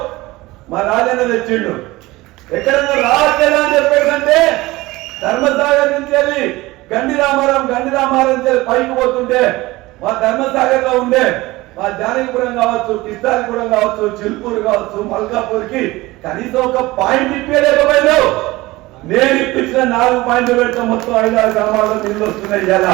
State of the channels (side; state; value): left; quieter; 19.9 dB